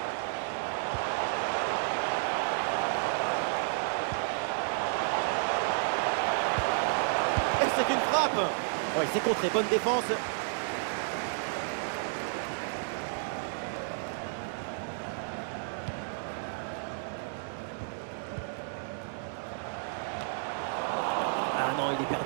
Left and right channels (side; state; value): left; silent; 57 dB below the other